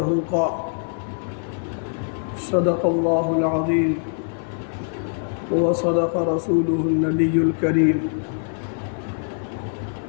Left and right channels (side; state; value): right; silent; digital silence